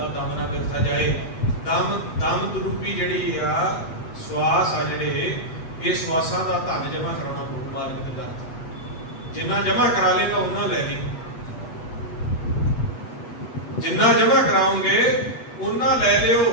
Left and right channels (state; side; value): late; right; 8.1 ms